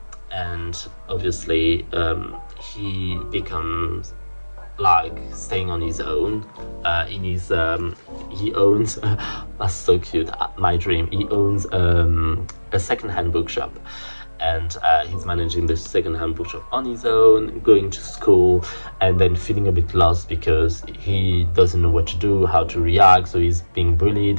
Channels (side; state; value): both; inverted; correlation -1.00